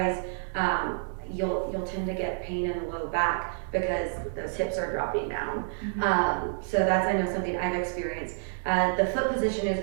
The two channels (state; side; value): silent; left; digital silence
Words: you'll tend to get pain in the low back because those hips are dropping down. So that's, I know, something I've experienced. The foot position is